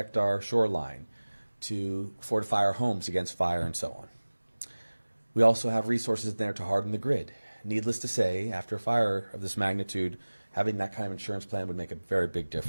our shoreline, to fortify our homes against fire and so on. We also have resources there to harden the grid. Needless to say, after a fire of this magnitude, having that kind of insurance plan would make a very big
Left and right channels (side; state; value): both; inverted; correlation -1.00